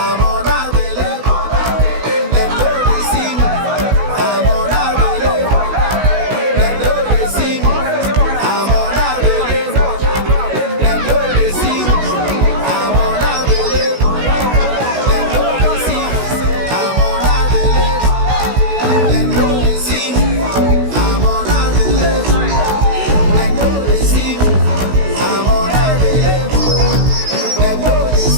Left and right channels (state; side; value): late; left; 16 ms